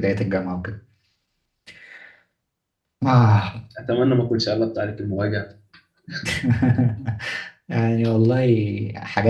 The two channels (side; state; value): both; identical; correlation 1.00